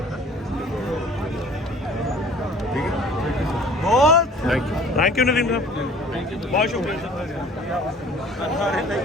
थैंक यू नदीम साहब बहुत शुक्रिया सर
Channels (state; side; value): normal; both; correlation 0.50